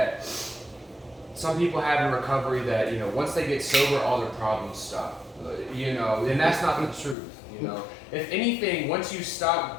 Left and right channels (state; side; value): drops out; right; at 7.2 s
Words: some people have in recovery that, you know, once they get sober, all their problems stop. You know, and that's not the truth. You know, if anything, once you